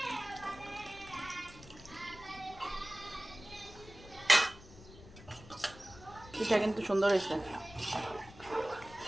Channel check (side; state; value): left; noise; rumble, 18 dB below the sound